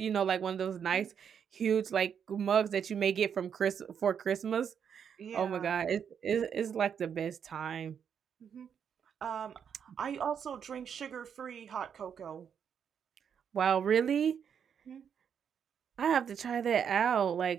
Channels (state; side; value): quieter; left; 7.7 dB